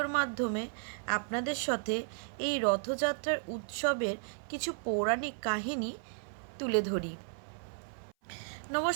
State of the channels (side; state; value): left; silent; 55 dB below the other